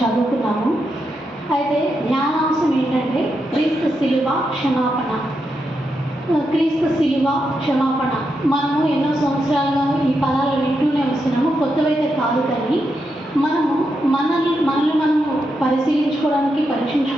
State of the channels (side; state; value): both; normal; correlation 0.84